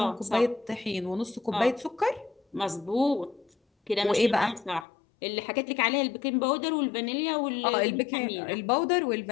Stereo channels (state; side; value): drops out; right; at 4.9 s